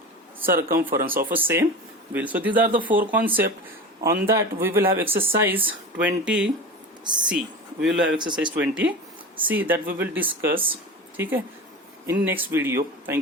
circumference of a same wheel. So these are the four concepts. On that we will have exercise 20C. We will have exercise 20C that we will discuss. ठीक है? In next video.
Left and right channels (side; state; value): both; normal; correlation 0.30